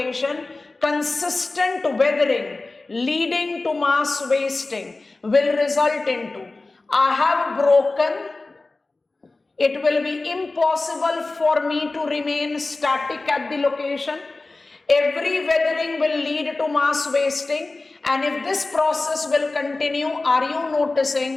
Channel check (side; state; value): right; quieter; 3.3 dB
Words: consistent weathering leading to mass wasting will result into, I have broken, it will be impossible for me to remain static at the location. Every weathering will lead to mass wasting, and if this process will continue, are you